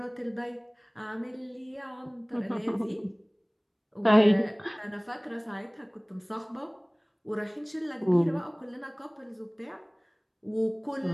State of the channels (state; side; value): identical; both; correlation 1.00